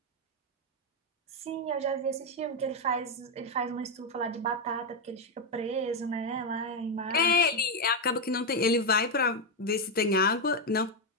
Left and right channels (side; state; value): both; normal; correlation 0.04